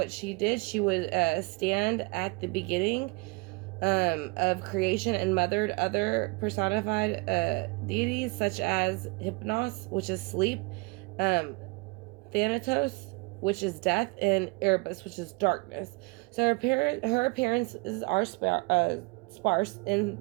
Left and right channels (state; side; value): quieter; left; 28.2 dB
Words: she did, she would stand at the beginning of creation and mothered other personified deities such as Hypnos, which is sleep, Thanatos, which is death, and Erebus, which is darkness. So her appearances are sparse